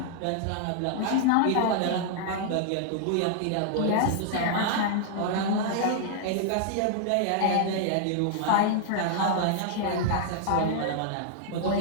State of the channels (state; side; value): different; both; correlation 0.00